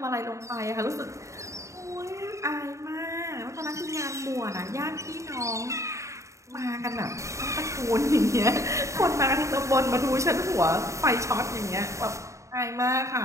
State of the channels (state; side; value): late; left; 0.15 ms